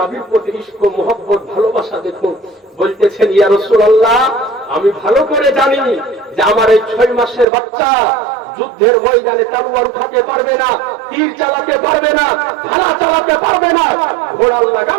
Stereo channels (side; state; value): left; drops out; at 7.5 s